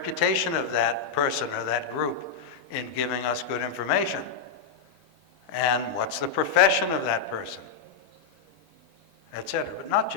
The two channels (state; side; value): quieter; right; 5.9 dB